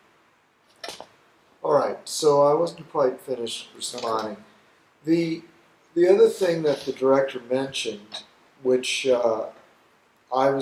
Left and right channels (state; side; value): identical; both; correlation 1.00